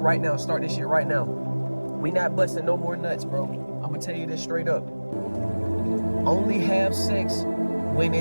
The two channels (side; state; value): both; inverted; correlation -1.00